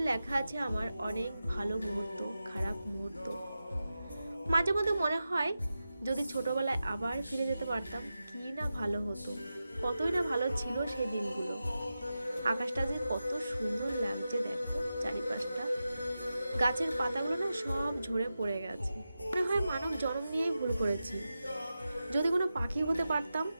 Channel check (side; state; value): both; inverted; correlation -0.92